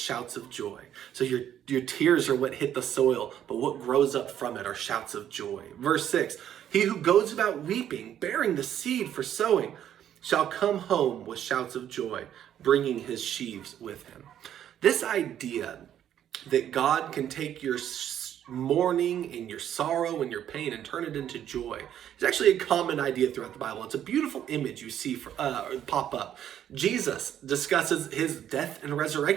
of joy. So your tears are what hit the soil, but what grows up from it are shouts of joy. Verse 6, he who goes about weeping, bearing the seed for sowing, shall come home with shouts of joy, bringing his sheaves with him. This idea that God can take your mourning and your sorrow and your pain and turn it into joy is actually a common idea throughout the Bible. It's a beautiful image you see pop up. Jesus discusses his death and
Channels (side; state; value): left; quieter; 10.4 dB